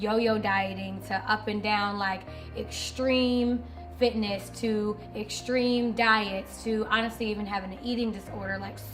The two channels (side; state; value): both; identical; correlation 1.00